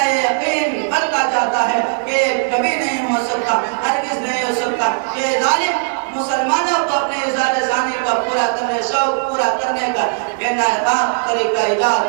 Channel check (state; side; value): silent; left; digital silence